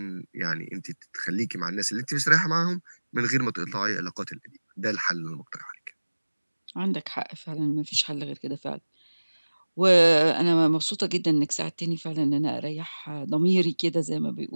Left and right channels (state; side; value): inverted; both; correlation -1.00